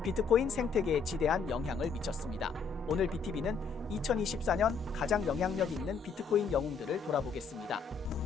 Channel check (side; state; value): right; quieter; 5.4 dB